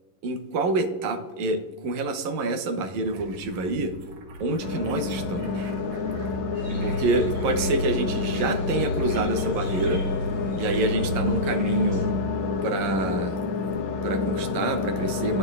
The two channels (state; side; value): late; left; 11 ms